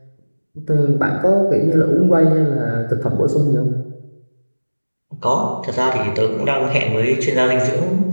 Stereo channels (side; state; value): both; inverted; correlation -1.00